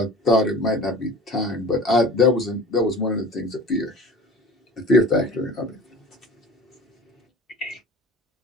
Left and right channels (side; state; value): both; normal; correlation 0.39